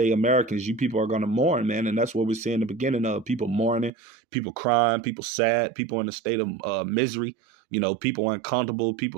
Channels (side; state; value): left; drops out; at 3.9 s